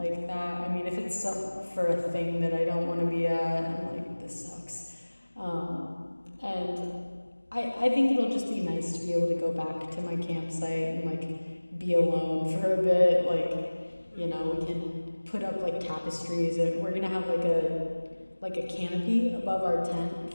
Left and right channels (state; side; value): inverted; both; correlation -1.00